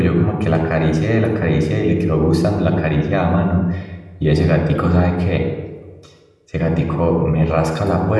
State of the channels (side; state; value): both; identical; correlation 1.00